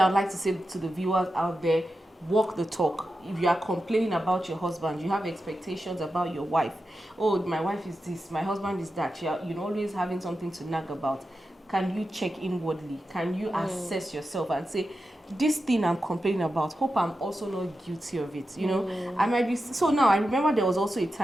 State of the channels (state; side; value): normal; both; correlation 0.90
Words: would like to say to the viewers out there, walk the talk. If you are complaining about your husband, you have expectations about your wife. Oh, my wife is this, my husband is that. You're always having something to nag about. Can you check inwardly? Can you assess yourself and say, this thing I'm complaining about, hope I'm also not guilty of it. I might be. So now I remember there was also a